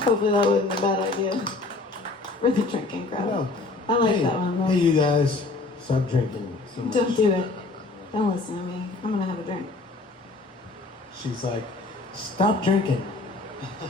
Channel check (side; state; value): right; quieter; 3.3 dB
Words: that wasn't a bad idea for the drinking crowd. No. I like Hey, that one though. hey, you guys, stop drinking so much. Don't do it. Don't listen to me. I'm gonna have a drink. She's like, stop drinking.